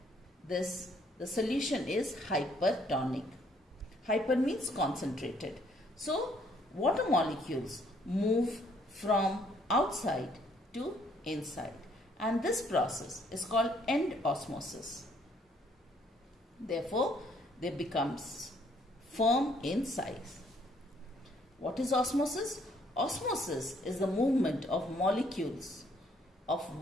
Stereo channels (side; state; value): both; normal; correlation 0.65